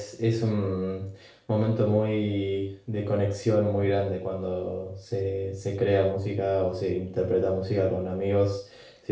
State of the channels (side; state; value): both; identical; correlation 1.00